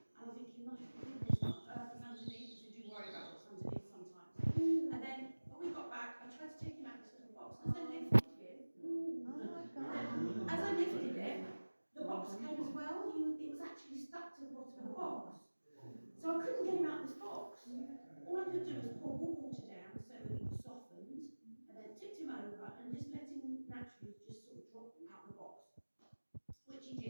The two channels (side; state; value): both; inverted; correlation -1.00